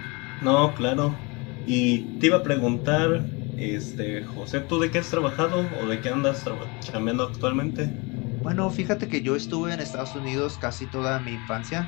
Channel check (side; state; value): right; quieter; 28.0 dB